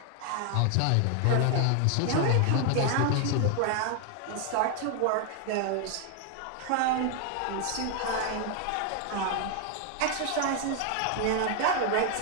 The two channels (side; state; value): both; different; correlation 0.00